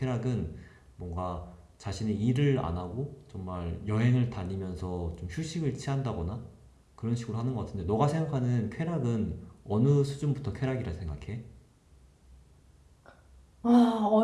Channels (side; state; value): both; identical; correlation 1.00